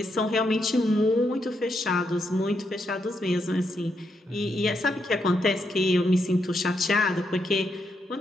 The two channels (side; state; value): both; normal; correlation 0.80